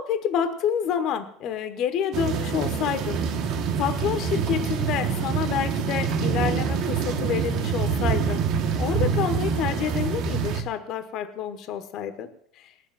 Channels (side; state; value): both; normal; correlation 0.36